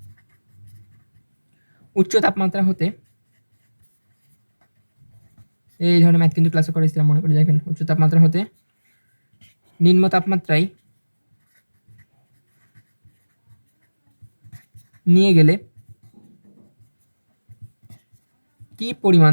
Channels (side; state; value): both; inverted; correlation -1.00